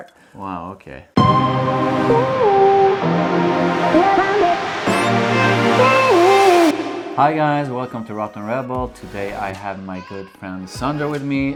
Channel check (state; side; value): identical; both; correlation 1.00